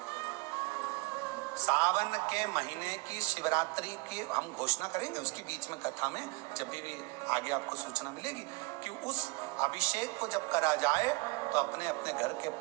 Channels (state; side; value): quieter; left; 27.2 dB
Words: सावन के महीने की शिवरात्रि की हम घोषणा करेंगे, उसके बीच में कथा में जब भी आगे आपको सूचना मिलेगी कि उस अभिषेक को जब करा जाए तो अपने अपने घर के